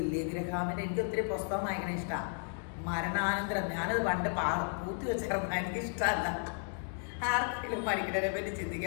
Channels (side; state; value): right; silent; 55 dB below the other